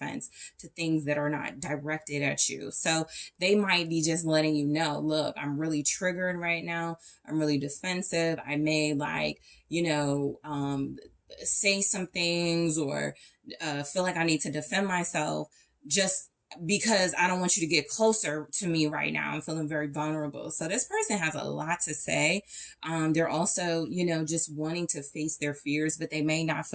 to things that are not directed at you. So they might be just letting you know, look, I'm really triggered right now. I'm really defensive. I may like, you know, say some things or feel like I need to defend myself just because I don't want you to get closer to me right now. I'm feeling very vulnerable. So this person has a lot to say. They're also, you know, just wanting to face their fears, but they may not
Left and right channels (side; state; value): both; identical; correlation 1.00